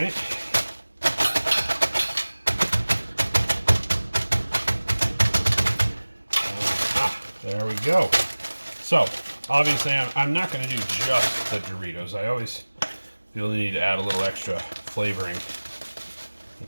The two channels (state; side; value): inverted; both; correlation -1.00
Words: There we go. So, obviously I'm not going to do just the Doritos. I always feel the need to add a little extra flavoring in